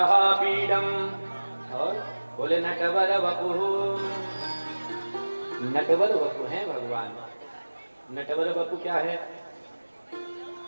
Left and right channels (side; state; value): both; inverted; correlation -1.00